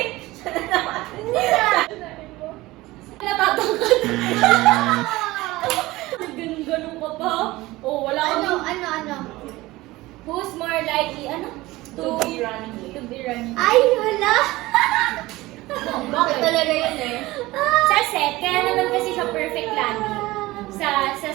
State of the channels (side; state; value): left; quieter; 19.1 dB